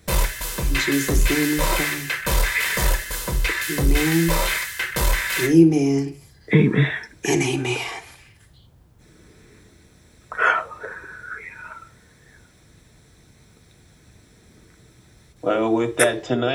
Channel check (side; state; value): both; identical; correlation 1.00